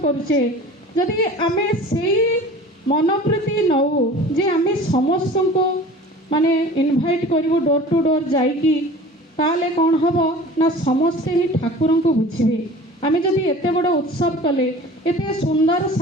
करूचे जदि आमे सेई मनोवृत्ति नौ जे आमे समस्त को माने इनभाइट करिवो डोर टू डोर जाइकी ताले कौन हम ना समस्ते ही ठाकुर को बुझे आम जदि एत बड़ उत्सव कले एत सुंदर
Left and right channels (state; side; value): normal; both; correlation 0.41